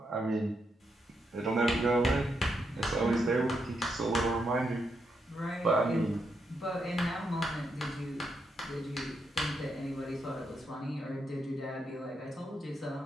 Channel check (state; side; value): normal; both; correlation 0.81